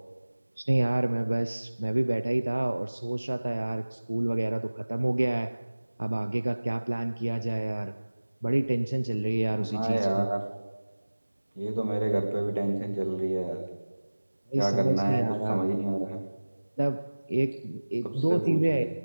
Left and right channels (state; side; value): inverted; both; correlation -1.00